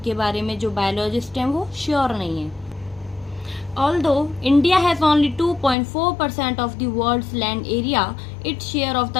बारे में जो बायोलॉजिस्ट हैं वो श्योर नहीं है। Although India has only 2.4% of the world's land area, its share of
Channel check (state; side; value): drops out; right; at 5.8 s